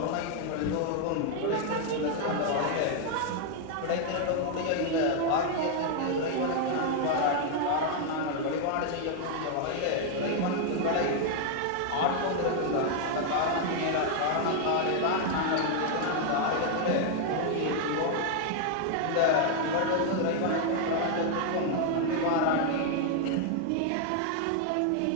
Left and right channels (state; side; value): different; both; correlation 0.00